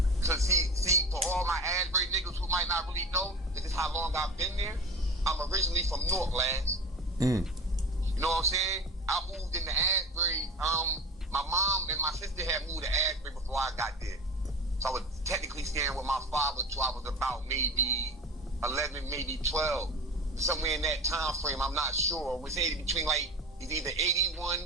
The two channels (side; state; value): both; normal; correlation 0.35